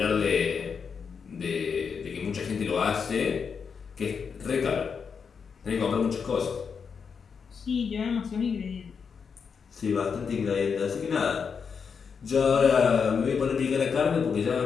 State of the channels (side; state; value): right; quieter; 6.1 dB